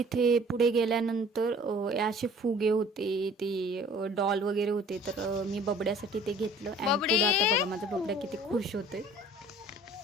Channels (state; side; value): normal; both; correlation 0.51